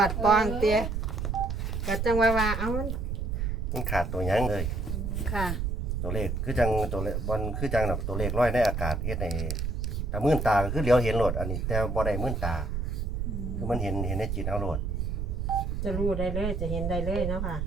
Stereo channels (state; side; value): noise; right; rumble, 1 dB below the sound